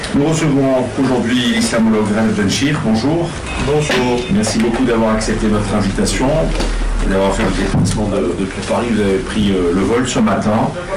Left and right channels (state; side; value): identical; both; correlation 1.00